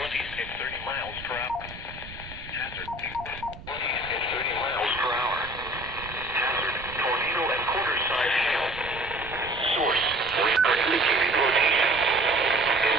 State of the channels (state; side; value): noise; right; rumble, 15 dB below the sound